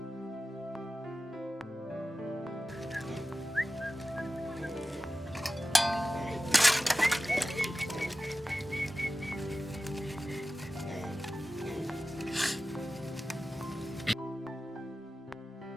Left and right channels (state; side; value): normal; both; correlation 0.95